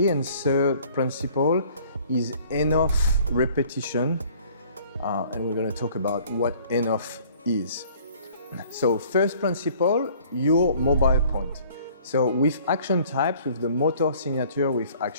And third principle is enough repetition. And we're going to talk about what enough is. So first principle, your mobile point. So with ActionTypes, with the motor signature with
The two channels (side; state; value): both; inverted; correlation -0.54